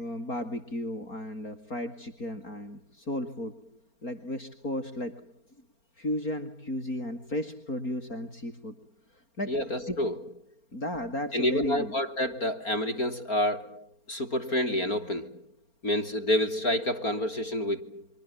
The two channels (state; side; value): late; right; 4.4 ms